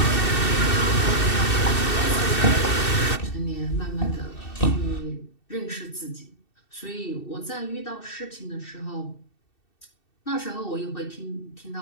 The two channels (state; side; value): late; right; 2.7 ms